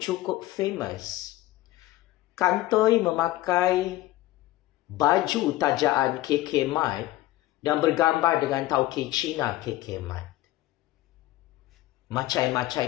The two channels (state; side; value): quieter; right; 16.7 dB